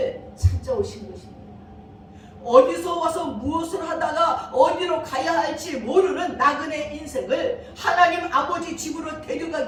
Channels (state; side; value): identical; both; correlation 1.00